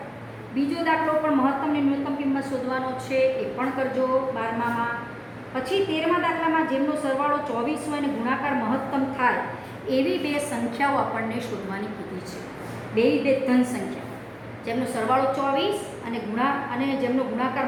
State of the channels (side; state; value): both; identical; correlation 1.00